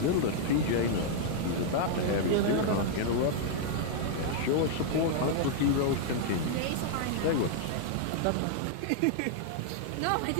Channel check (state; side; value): different; both; correlation -0.01